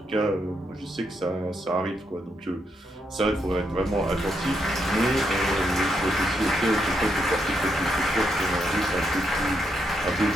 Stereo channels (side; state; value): both; normal; correlation 0.79